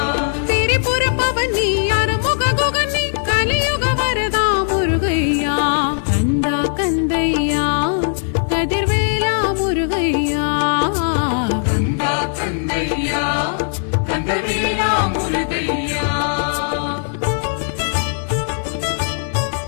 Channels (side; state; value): right; silent; digital silence